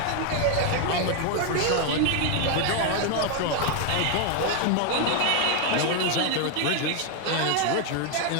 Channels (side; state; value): both; different; correlation 0.01